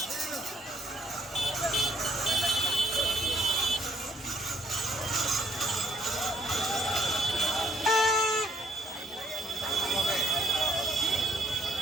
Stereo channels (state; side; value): normal; both; correlation 0.67